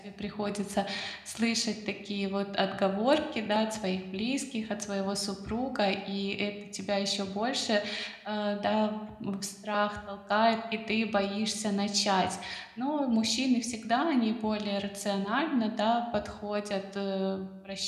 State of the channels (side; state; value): both; identical; correlation 1.00